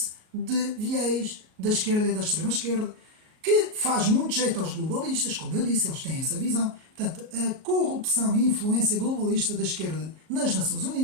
de viés da esquerda e da extrema-esquerda, que faz muito jeito aos globalistas, como eu disse, eles têm essa visão. Portanto, a corrupção e influência globalista da esquerda nas Nações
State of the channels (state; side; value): late; left; 38 ms